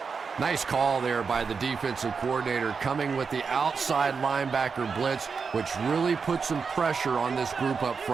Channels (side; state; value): left; quieter; 5.4 dB